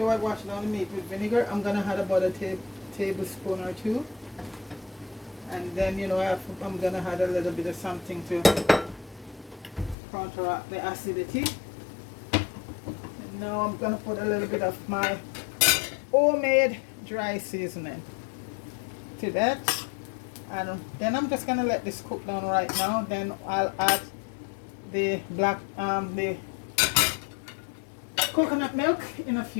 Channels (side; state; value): right; drops out; at 10.0 s